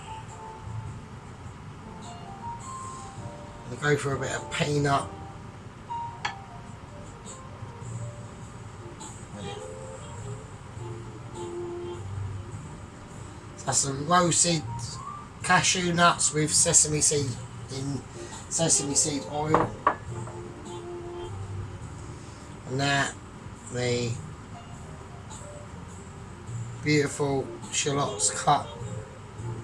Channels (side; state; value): both; identical; correlation 1.00